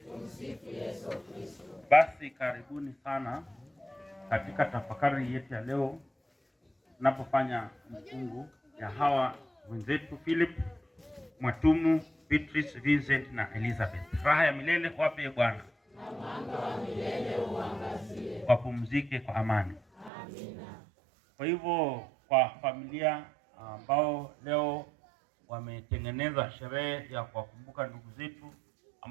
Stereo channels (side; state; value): left; drops out; at 20.1 s